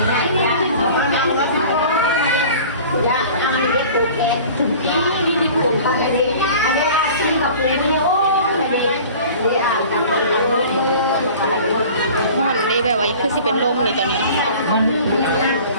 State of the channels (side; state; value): both; inverted; correlation -0.43